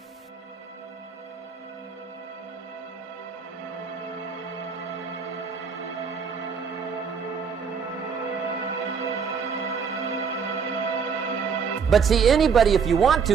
But see, anybody, if you want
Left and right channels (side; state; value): left; quieter; 6.2 dB